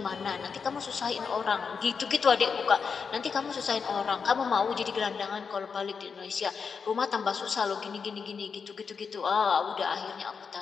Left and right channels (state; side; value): quieter; right; 5.8 dB